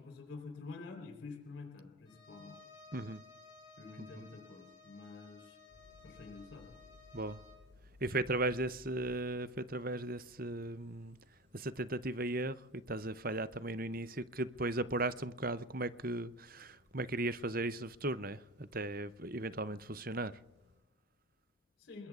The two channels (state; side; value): normal; both; correlation 0.30